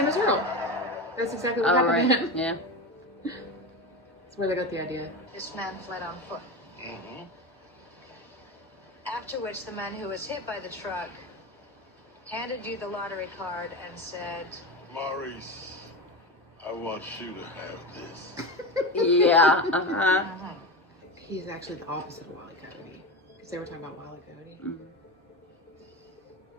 is Earl. That's exactly what All happened to right. him. Yeah. That's where they got the idea. This man fled on foot. Mm-hmm. After which the man who was hit by the truck handed you the lottery card and said, Maurice, I want you to have this. Yeah. Uh-huh. He's actually the opposite of Wile E. Coyote. Because they were talking about Wile E. Coyote. Mhm.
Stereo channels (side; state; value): both; normal; correlation 0.22